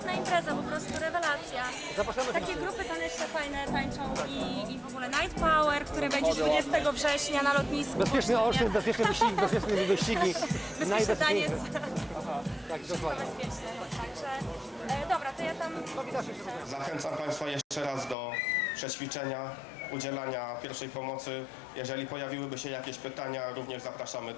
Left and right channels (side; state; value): right; drops out; at 18.2 s